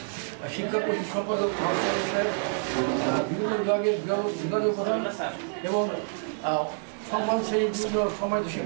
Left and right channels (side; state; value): left; silent; 60 dB below the other